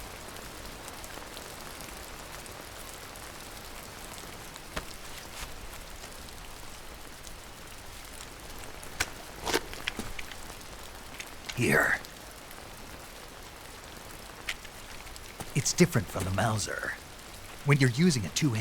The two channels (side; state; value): both; identical; correlation 1.00